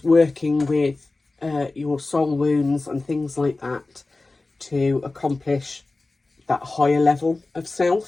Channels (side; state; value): right; quieter; 3.3 dB